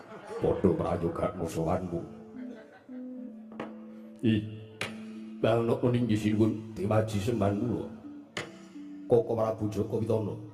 Padha prayoga musuhanmu. Balno kuning jisinipun diwaji sembahan kula. Koko Prabu Jaka Pitana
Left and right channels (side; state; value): both; identical; correlation 1.00